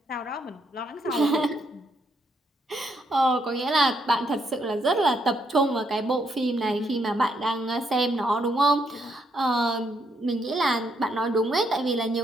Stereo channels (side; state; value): both; normal; correlation 0.75